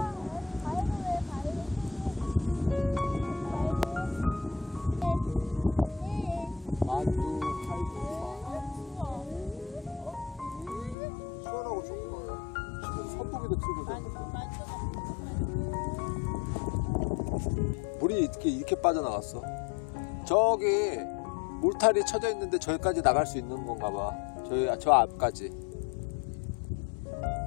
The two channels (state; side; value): drops out; right; at 11.0 s